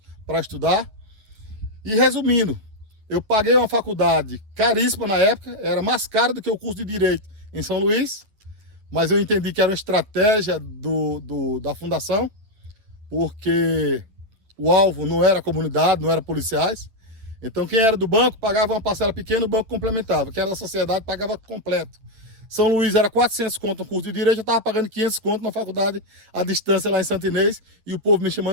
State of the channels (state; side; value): late; left; 9.3 ms